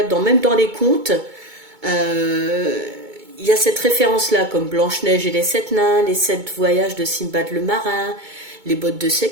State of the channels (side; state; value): left; late; 2.2 ms